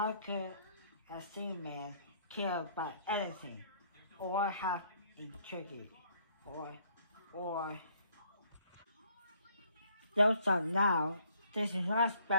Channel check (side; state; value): both; inverted; correlation -0.63